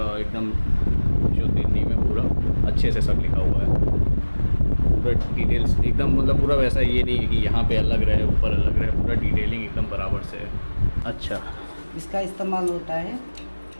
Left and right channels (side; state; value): both; inverted; correlation -1.00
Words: एकदम शुद्ध हिंदी में पूरा अच्छे से सब लिखा हुआ है, पूरा डिटेल्स एकदम, मतलब पूरा वैसा ये नहीं है कि यहाँ पे अलग रहे ऊपर अलग रहे, पूरा डिटेलिंग एकदम बराबर से है। अच्छा, इसका इस्तेमाल होता है